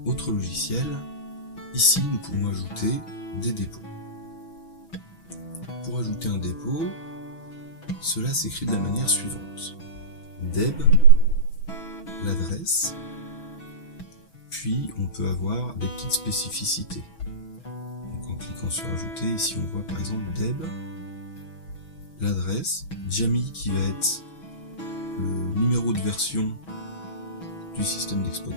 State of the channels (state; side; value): late; right; 6.2 ms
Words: autre logiciel, ici nous pouvons ajouter des dépôts. Pour ajouter un dépôt, cela s'écrit de la manière suivante. Deb, l'adresse, puis on peut avoir des petites spécificités. Donc en cliquant sur ajouter, ici on voit par exemple Deb, l'adresse, Jammy qui va être le numéro de version du système